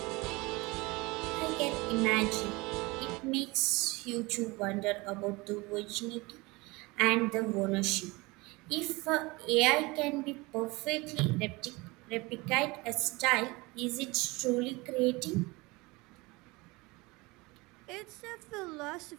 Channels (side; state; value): left; quieter; 23.8 dB